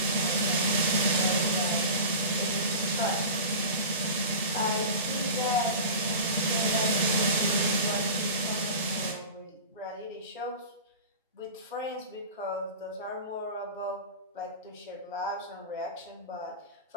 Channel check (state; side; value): inverted; both; correlation -0.33